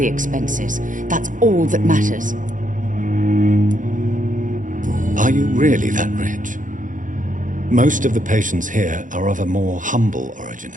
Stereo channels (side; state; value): left; late; 0.38 ms